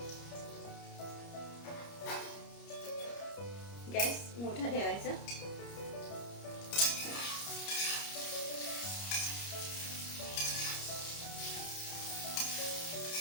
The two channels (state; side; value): late; right; 30 ms